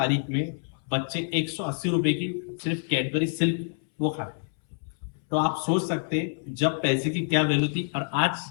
में बच्चे 180 रुपए की सिर्फ कैडबरी सिल्क वो खाते। तो आप सोच सकते हैं जब पैसे की क्या वैल्यू थी और आज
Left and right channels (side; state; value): right; silent; 60 dB below the other